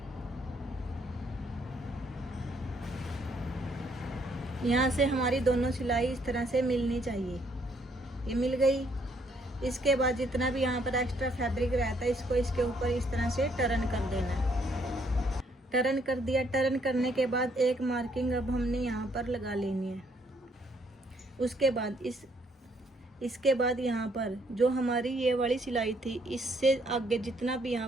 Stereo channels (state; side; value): normal; both; correlation 0.69